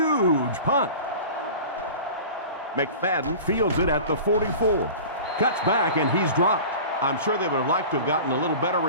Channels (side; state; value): both; inverted; correlation -0.37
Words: punt. McFadden fields it at the 44. Cuts back, and he's dropped. I'm sure they would have liked to have gotten a little better